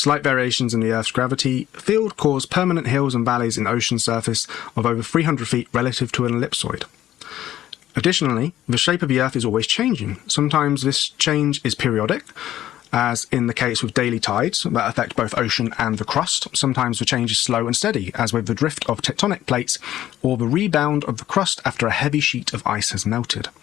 variations in the Earth's gravity field cause permanent hills and valleys in ocean surface of over 300 feet relative to an ellipsoid. Additionally, the shape of the Earth is always changing. Sometimes this change is periodic, as in the case with daily tides that affect both ocean and the crust. Sometimes the change is slow and steady, as with the drift of tectonic plates or the rebound of the crust after a heavy sheet of ice has melted.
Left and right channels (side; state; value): right; quieter; 12.9 dB